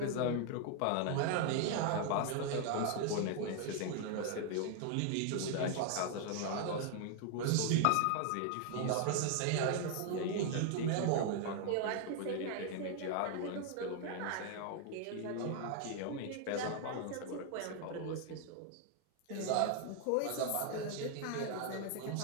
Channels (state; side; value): different; both; correlation 0.00